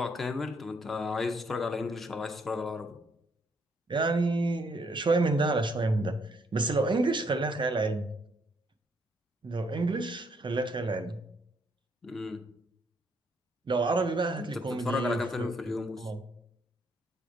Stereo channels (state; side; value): normal; both; correlation 0.71